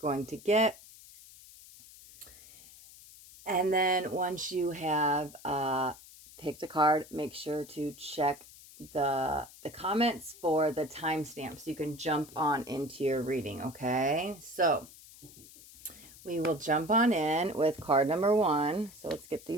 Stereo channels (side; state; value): left; noise; hiss, 20 dB below the sound